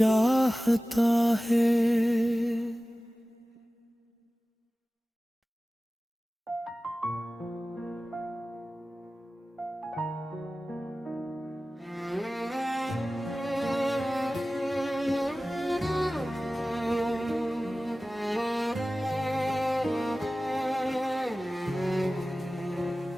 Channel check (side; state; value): both; normal; correlation 0.97